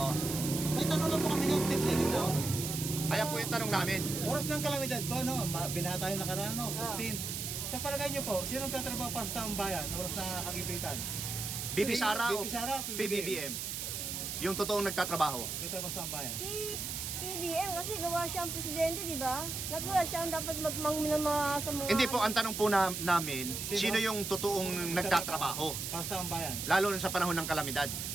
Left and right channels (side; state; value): right; noise; hiss, 4 dB below the sound